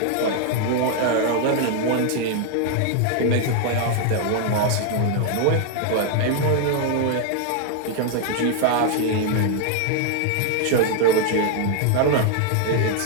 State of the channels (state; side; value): different; both; correlation 0.00